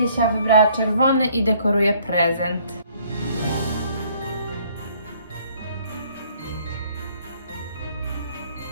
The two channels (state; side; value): inverted; both; correlation -0.61